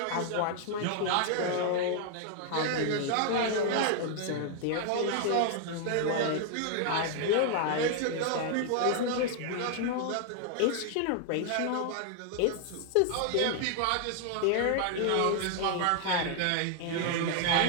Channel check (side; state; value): both; different; correlation 0.00